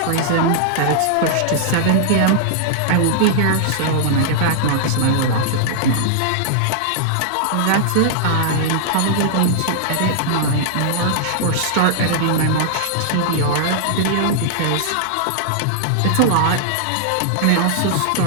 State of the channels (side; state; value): both; different; correlation -0.01